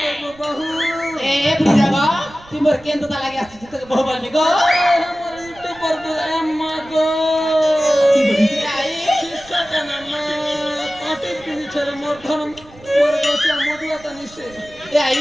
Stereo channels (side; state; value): right; noise; rumble, 23 dB below the sound